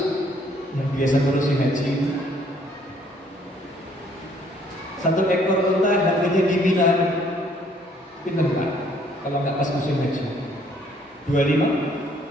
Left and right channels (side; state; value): both; normal; correlation 0.63